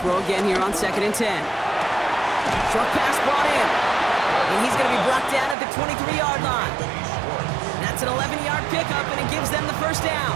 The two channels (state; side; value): drops out; left; at 5.6 s